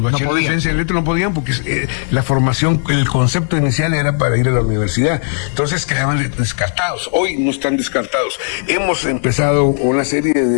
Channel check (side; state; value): right; silent; 68 dB below the other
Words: bachilleres de ciencia en letras, no podían, porque la formación, el concepto inicial era para ir a la universidad, entonces quedaban descartados. Hoy no están descartados. Hemos empezado una serie